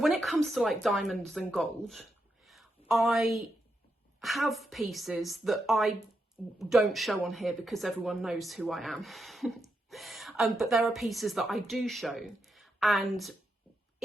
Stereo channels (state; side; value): normal; both; correlation 0.84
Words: it comes to like diamonds and gold, I have pieces that I don't show on here because everyone knows who I am. But there are pieces that I do show, and